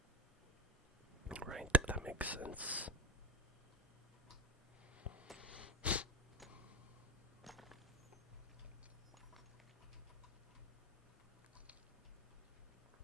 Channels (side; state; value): both; normal; correlation 0.18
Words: Right, that makes sense.